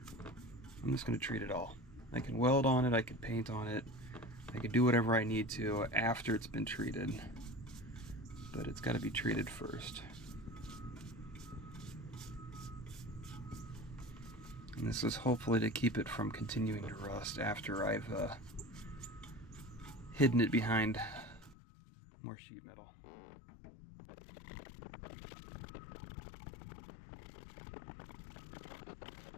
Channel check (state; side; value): drops out; right; at 21.6 s